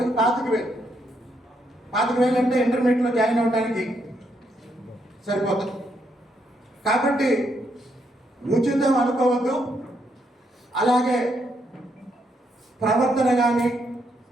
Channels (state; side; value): normal; both; correlation 0.76